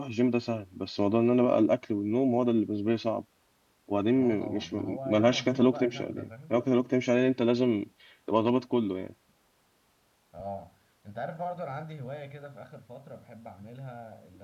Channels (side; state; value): both; identical; correlation 1.00